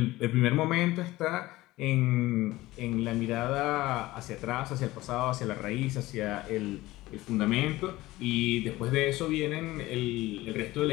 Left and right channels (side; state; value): right; quieter; 18.1 dB